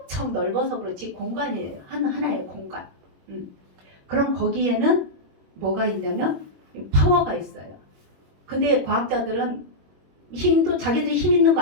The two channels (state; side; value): late; left; 21 ms